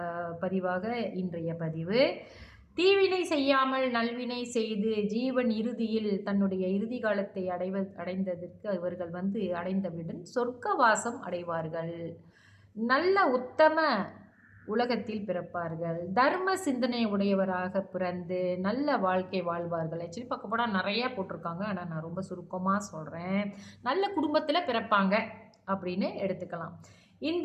பதிவாக இன்றைய பதிவு. தீவினை செய்யாமல் நல்வினை செய்து ஜீவன் இறுதியில் தன்னுடைய இறுதி காலத்தை அடைந்ததற்கு இவர்கள் அடைந்தவுடன் சொர்க்கவாசம் அடைவார்கள். நல்ல உத்தம உலகத்தில் பிறப்பார்கள். தர்ம சிந்தனை உடையவராக பிறந்து நல்ல வாழ்க்கை வாழ்வார்கள். ஆக்சுவலி பார்க்க போனால் நிறையா போட்டிருக்காங்க, ஆனால் நான் ரொம்ப சுருக்கமாக சொல்கிறேன். நல்ல குடும்பத்தில் பிறப்பாங்க அப்படின்னு எடுத்துக்கலாம்.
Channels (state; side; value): identical; both; correlation 1.00